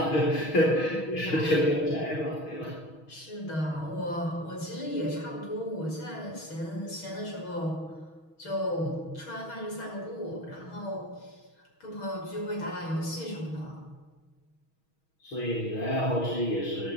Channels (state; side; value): late; right; 6.3 ms